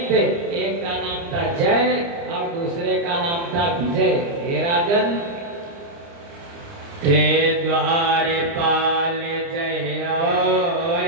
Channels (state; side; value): late; left; 29 ms